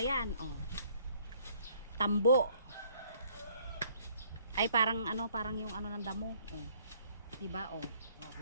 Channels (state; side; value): inverted; both; correlation -0.62